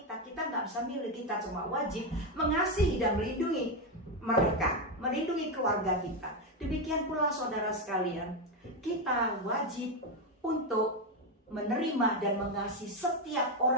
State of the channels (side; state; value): both; normal; correlation 0.08